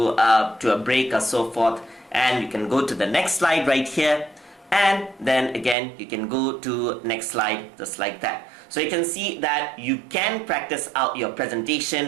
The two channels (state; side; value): drops out; left; at 5.8 s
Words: to a break or so forth. And you can go to the next slide right here. And then again, you can go to next slide just like that. So you can see that you can practice out your